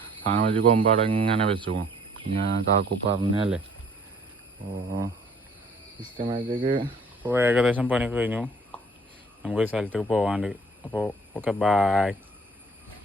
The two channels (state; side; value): normal; both; correlation 0.56